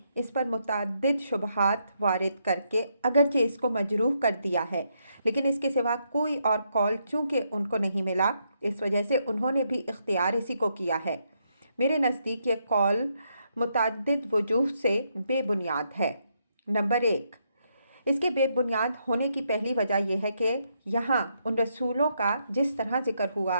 اس پر متعدد شبہات وارد کر کے اگرچہ اس کو مجروح کر دیا ہے، لیکن اس کے سوا کوئی اور قول چونکہ ان کو نہیں ملا، اس وجہ سے انہوں نے بھی اختیار اسی کو کیا ہے۔ میرے نزدیک یہ قول متعدد وجوہ سے بے بنیاد ہے۔ نمبر 1، اس کے بے بنیاد ہونے کی پہلی وجہ یہ ہے کہ یہاں ان رسولوں کا جس طرح ذکر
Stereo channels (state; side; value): inverted; both; correlation -0.78